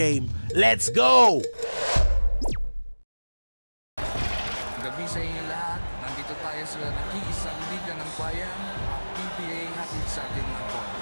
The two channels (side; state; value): both; inverted; correlation -1.00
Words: Let's go! Gabi sa inyo lahat. Nandito tayo sa nag-iisang liga ng bayan, PBA hatid sa ating mga boy.